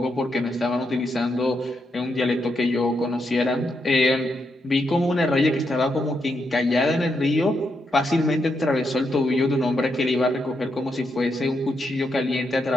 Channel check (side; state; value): both; normal; correlation 0.81